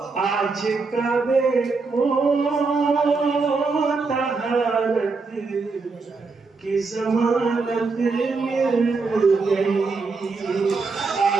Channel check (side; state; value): left; quieter; 4.2 dB